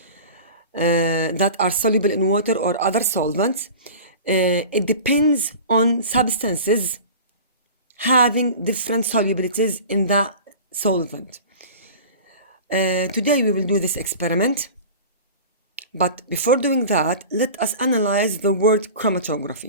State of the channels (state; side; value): inverted; both; correlation -0.37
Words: that are soluble in water or other solvents. It depends on substances having different solubilities in the solvent. Today we will do this experiment, but before doing that, let us analyze the word